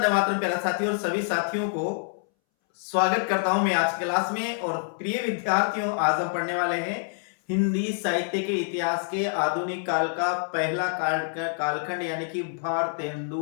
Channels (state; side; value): silent; right; 61 dB below the other